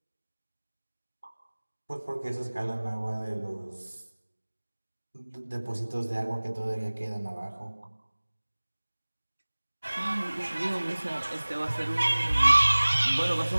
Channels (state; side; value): inverted; both; correlation -1.00